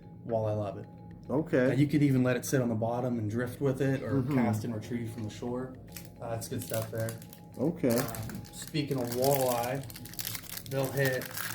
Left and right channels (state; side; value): identical; both; correlation 1.00